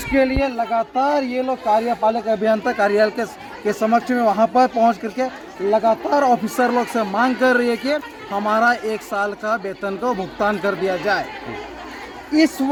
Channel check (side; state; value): both; identical; correlation 1.00